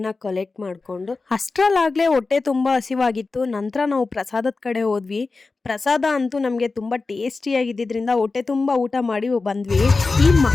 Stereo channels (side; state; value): right; quieter; 3.9 dB